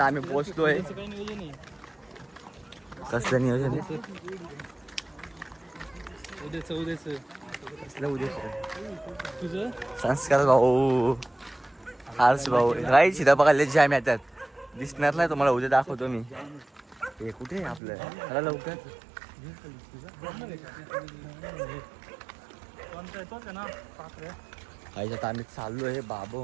आम्ही पोहोचतोय. कसलं नियोजन आहे? कसलं उद्या तुझं संस्कार भाऊ, हार्स भाऊ. काही सीधा बघायला जाम येतात. दिसणार नाही तुम्हाला, उद्या दाखवतो मी. हे कुठे आहे आपलं? चला लवकर. काही आता आम्ही चाललो आहे.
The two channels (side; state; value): left; drops out; at 17.8 s